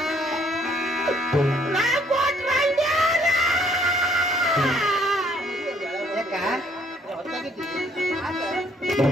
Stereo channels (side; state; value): both; normal; correlation 0.64